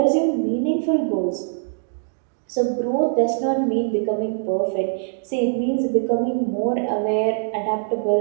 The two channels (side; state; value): left; silent; digital silence